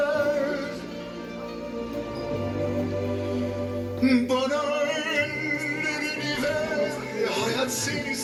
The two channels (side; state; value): both; identical; correlation 1.00